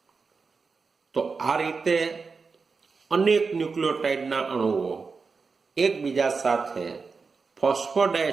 તો આ રીતે અનેક ન્યુક્લિયોટાઇડના અણુઓ એકબીજા સાથે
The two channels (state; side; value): quieter; left; 4.8 dB